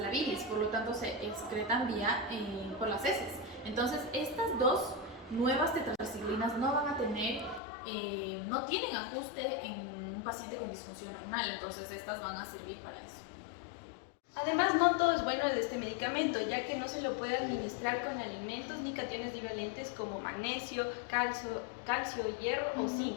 la bilis, por lo tanto se excretan por las heces. Entonces estas dos nuevas tetraciclinas no van a tener, no tienen ajuste en un paciente con disfunción renal, entonces estas van a servir para eso. Además, no todo es bueno de este medicamento, ya que no se lo puede administrar con alimentos ni cationes divalentes como magnesio, calcio, hierro o zinc,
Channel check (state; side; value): drops out; right; at 7.6 s